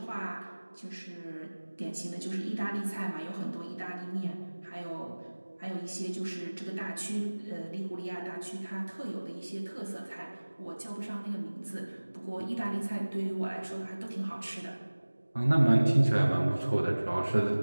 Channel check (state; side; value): inverted; both; correlation -1.00